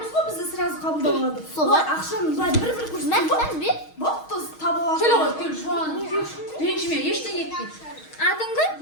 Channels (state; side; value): late; right; 6.4 ms